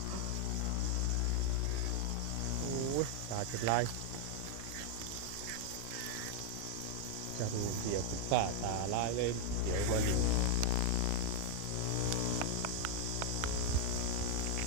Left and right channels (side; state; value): both; different; correlation 0.00